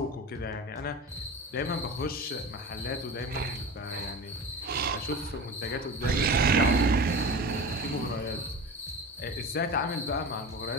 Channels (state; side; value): normal; both; correlation 0.31